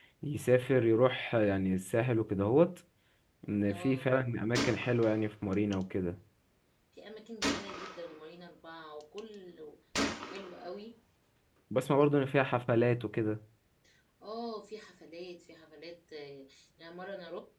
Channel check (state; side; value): identical; both; correlation 1.00